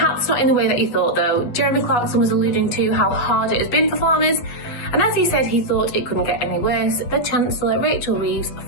not in the way that you thought though. Jeremy Clarkson was alluding to how hard it has been for farmers, and as he said he thought it couldn't get any worse, the Chancellor, Rachel Reeves,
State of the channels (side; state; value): right; late; 8.1 ms